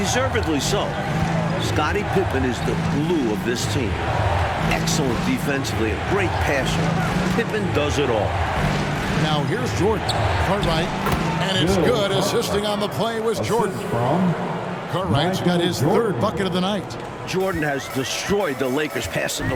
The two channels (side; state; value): both; identical; correlation 1.00